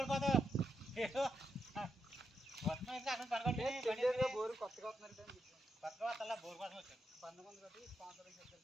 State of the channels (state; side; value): normal; both; correlation 0.82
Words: బోరు కొత్తగా వస్తున్నారు కొత్తగా వస్తా బోర్ కోసం వచ్చాను 19 కట్టి స్పాన్సర్